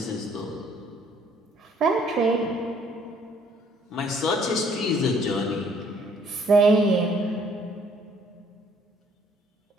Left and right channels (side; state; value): both; normal; correlation 0.61